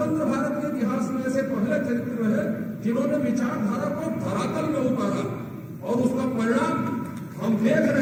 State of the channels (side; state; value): both; identical; correlation 1.00